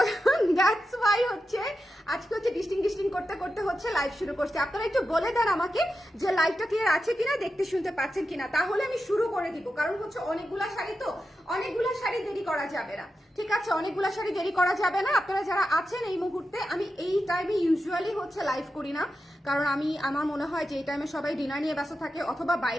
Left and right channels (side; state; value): both; normal; correlation 0.90